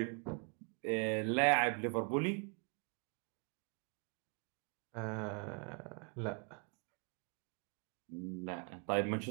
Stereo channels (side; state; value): left; quieter; 39.6 dB